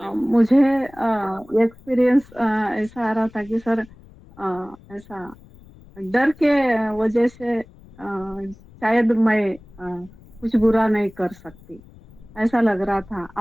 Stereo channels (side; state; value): left; noise; rumble, 23 dB below the sound